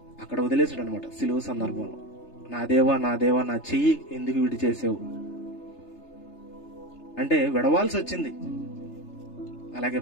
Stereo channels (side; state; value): right; late; 3.3 ms